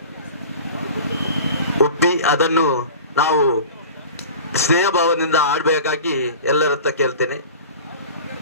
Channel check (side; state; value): both; inverted; correlation -0.37